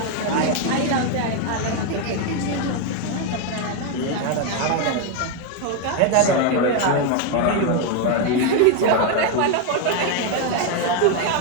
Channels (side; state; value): both; different; correlation 0.01